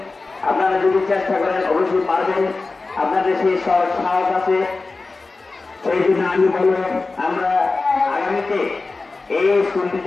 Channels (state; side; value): quieter; right; 3.7 dB